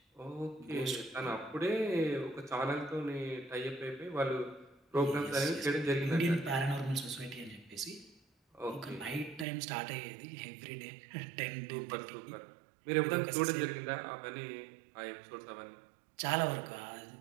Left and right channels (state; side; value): drops out; left; at 9.5 s